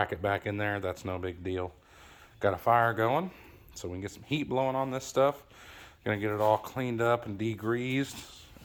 back in there. That's no big deal. Got a fire going, so we can get some heat blowing on this stuff. Gonna get it all cleaned up and degreased,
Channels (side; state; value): both; identical; correlation 1.00